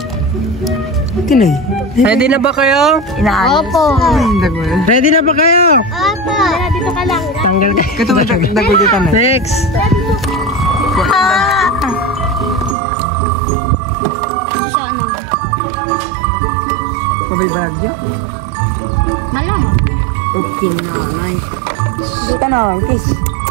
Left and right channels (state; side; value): drops out; left; at 12.8 s